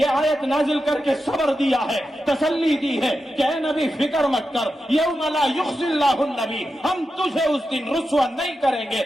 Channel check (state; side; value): normal; both; correlation 0.89